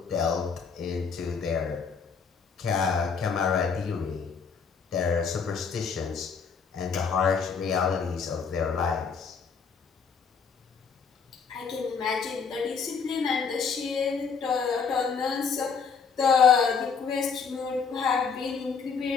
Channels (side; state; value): right; quieter; 5.8 dB